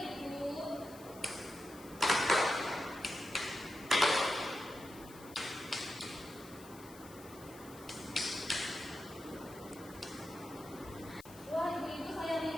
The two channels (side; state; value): left; noise; hiss, 19 dB below the sound